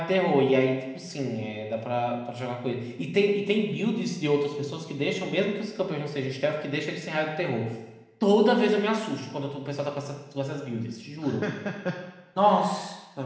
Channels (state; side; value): identical; both; correlation 1.00